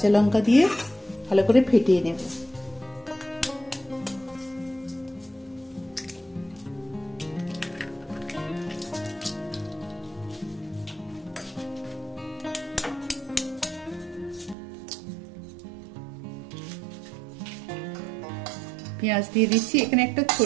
লঙ্কা দিয়ে ভালো করে ফেটিয়ে নেব। পেঁয়াজ দিয়ে দিচ্ছি, এখানে একটা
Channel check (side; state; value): left; drops out; at 14.6 s